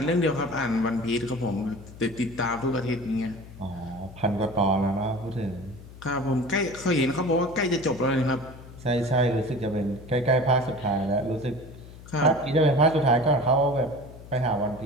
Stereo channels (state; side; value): noise; left; hum, 17 dB below the sound